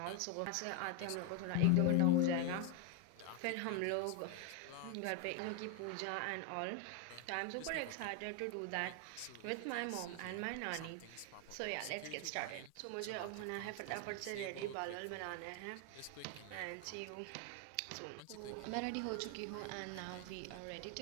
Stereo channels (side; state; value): both; different; correlation 0.01